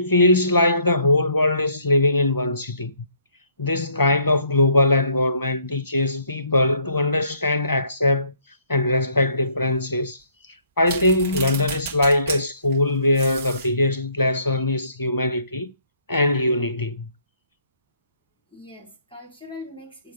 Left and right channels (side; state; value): both; inverted; correlation -0.65